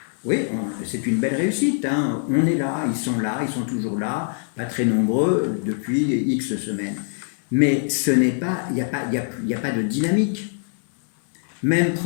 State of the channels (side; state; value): right; silent; 60 dB below the other